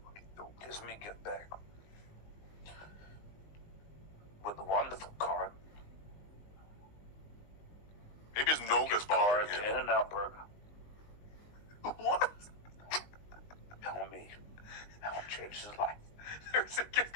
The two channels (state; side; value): late; right; 19 ms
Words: Gives me a gift bag with a wonderful card. Maybe his Noga's Card bothering to him. In-N-Out Burger. What? Telling me how it changed his life. There's a